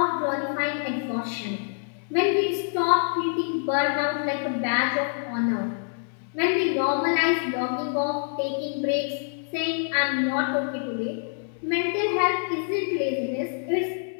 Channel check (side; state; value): right; silent; digital silence